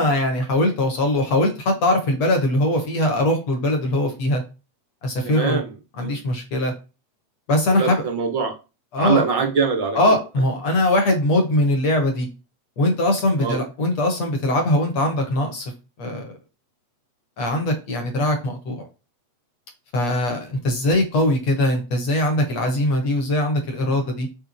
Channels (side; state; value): right; late; 8.3 ms